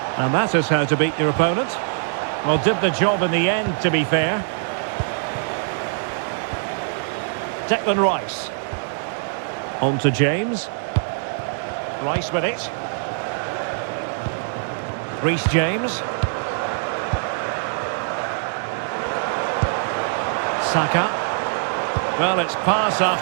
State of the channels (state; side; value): silent; left; digital silence